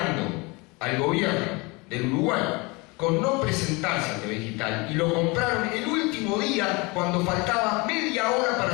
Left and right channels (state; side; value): quieter; right; 26.6 dB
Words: al gobierno del Uruguay con no presentarse a TV digital y lo compraron el último día cuando faltaba media hora